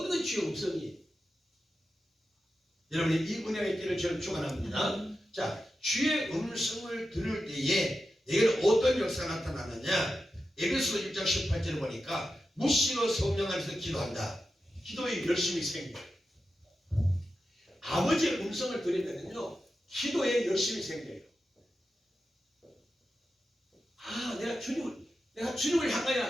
건 주의 음성이에요. 여러분이 이 은혜가 있기를 저는 축원합니다. 자, 주의 음성을 들을 때에 내게는 어떤 역사가 나타나느냐? 에베소 1장 18절을 보니까 무시로 성령 안에서 기도한다. 기도에 열심이 생겨요. 아버지의 음성을 들으면요 기도에 열심이 생겨요. 내가 주님을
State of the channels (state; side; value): normal; both; correlation 0.91